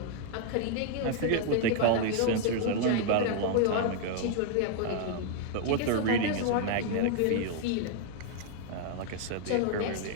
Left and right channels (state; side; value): different; both; correlation 0.00